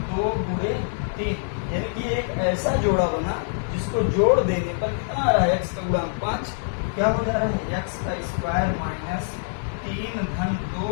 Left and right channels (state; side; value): silent; right; digital silence